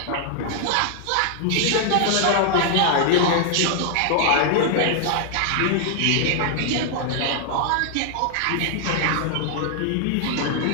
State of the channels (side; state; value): both; different; correlation 0.00